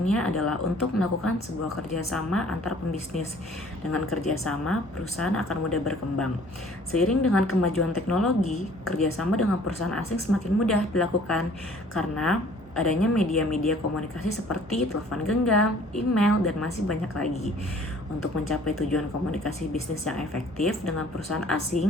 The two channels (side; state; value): both; normal; correlation 0.54